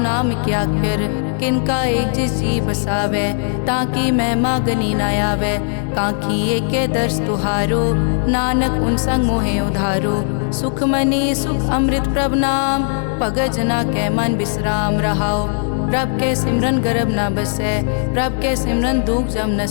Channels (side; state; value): right; silent; digital silence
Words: क्याकर। किनका एक जिस जी बसावै ताकि महिमा गनी न आवै। कांखी एके दर्श तुहारो नानक उन संग मोहे उधारो। सुख मनी सुख अमृत प्रभ नाम भगत जना कै मन विश्राम रहाओ। प्रभ के सिमरन गर्भ न बसै प्रभ के सिमरन दुख जम